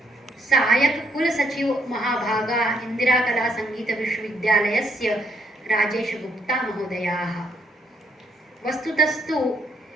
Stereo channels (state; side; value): normal; both; correlation 0.72